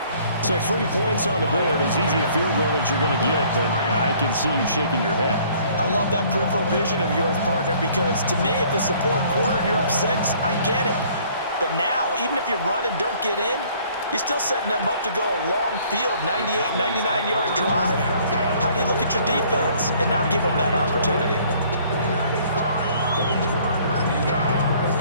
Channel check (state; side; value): inverted; both; correlation -0.58